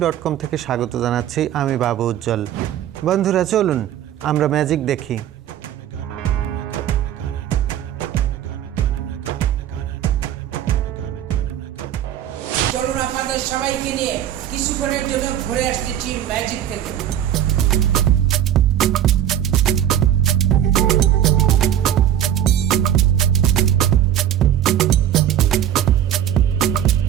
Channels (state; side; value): quieter; left; 11.0 dB